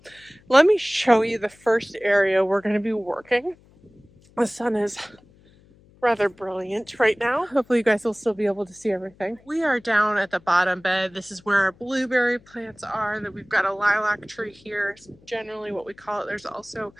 let me show you the first area we're going to be working. The sun is rather brilliant right now. Hopefully you guys will still be able to see everything. We are down at the bottom bed. This is where our blueberry plants are. That we've got a lilac tree here, generally what we call it. There's also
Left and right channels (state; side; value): noise; left; hum, 28 dB below the sound